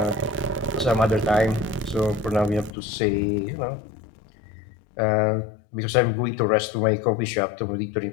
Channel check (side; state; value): right; drops out; at 2.8 s